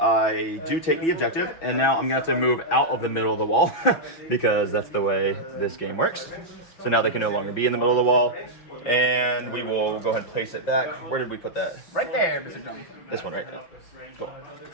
do take the objective, and now I'm going to have to move out of the middle of the wall, because that's the way this game works. So now they can no longer be in the middle of the wall, and we will go ahead and place it back. Where did we put that? Right there, Mr. Jonathan. This one right there. Cool.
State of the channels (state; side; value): late; right; 6.1 ms